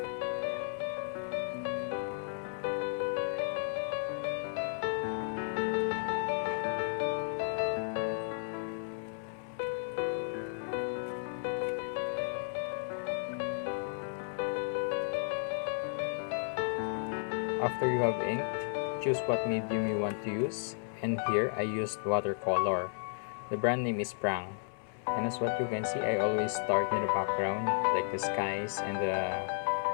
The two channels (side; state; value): right; silent; 55 dB below the other